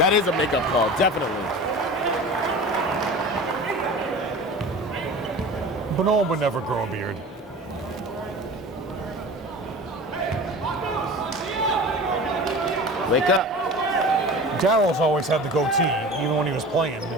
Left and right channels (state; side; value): normal; both; correlation 0.36